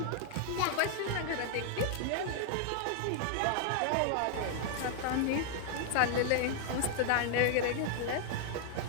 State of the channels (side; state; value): both; different; correlation 0.00